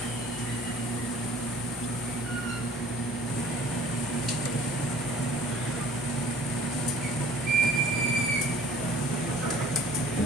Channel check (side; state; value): both; normal; correlation 0.50